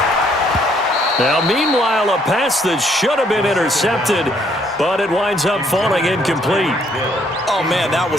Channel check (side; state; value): both; normal; correlation 0.67